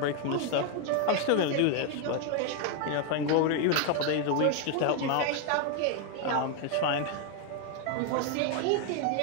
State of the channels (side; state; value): both; different; correlation 0.01